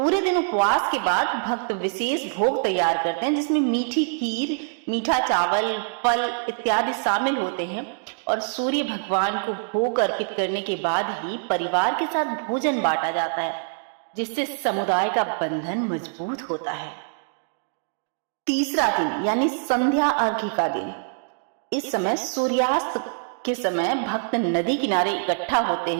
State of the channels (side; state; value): left; silent; digital silence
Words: दिन उपवास के बाद भक्त विशेष भोग तैयार करते हैं, जिसमें मीठी खीर, मीठा चावल, फल इत्यादि शामिल होते हैं और सूर्य भगवान को भोग अर्पित करने के बाद ही परिवार के साथ भोजन बांटा जाता है, जिससे समुदाय का बंधन मजबूत होता है। तीसरा दिन यानी संध्या अर्घ्य का दिन, इस समय सूर्यास्त के समय भक्त नदी किनारे इकट्ठा होते